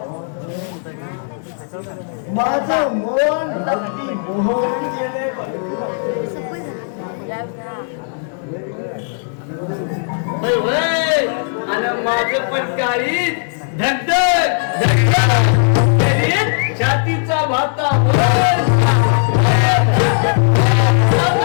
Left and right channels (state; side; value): silent; right; digital silence